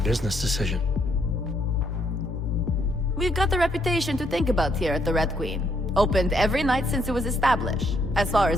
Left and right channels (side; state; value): both; normal; correlation 0.72